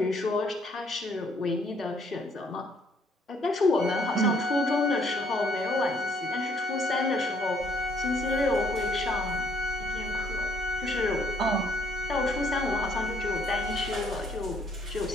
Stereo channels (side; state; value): both; normal; correlation 0.65